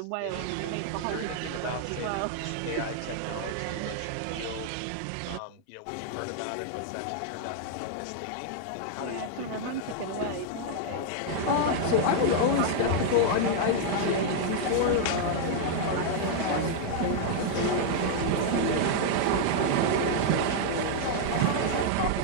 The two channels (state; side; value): different; both; correlation -0.01